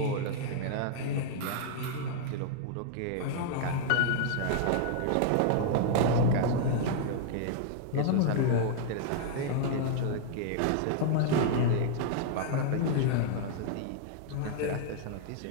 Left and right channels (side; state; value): both; different; correlation -0.01